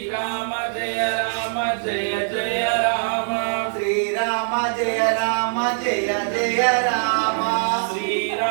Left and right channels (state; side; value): silent; left; digital silence